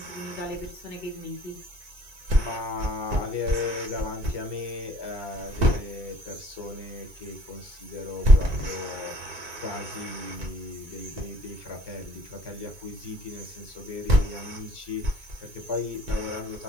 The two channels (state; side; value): late; left; 2.3 ms